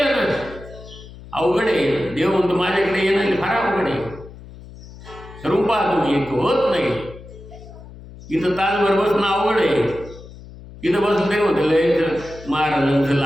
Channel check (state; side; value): noise; left; hum, 17 dB below the sound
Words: ना, अवघड आहे. देव म्हणतो माझ्याकडे येणं फार अवघड आहे. ठरवून पहा तुम्ही, एक होत नाही. इथं तासभर बसणं अवघड आहे. इथं बसलं तरी होतं लय महाराजांचं